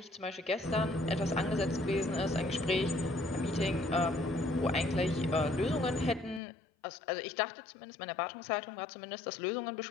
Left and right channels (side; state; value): right; drops out; at 6.4 s